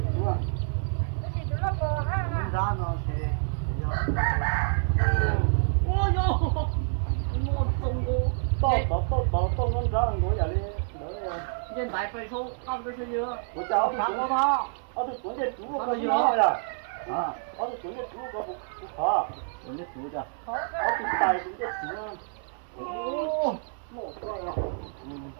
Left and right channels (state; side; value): silent; left; 58 dB below the other